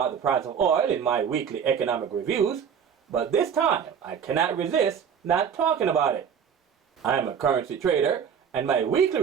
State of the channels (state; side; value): quieter; left; 7.5 dB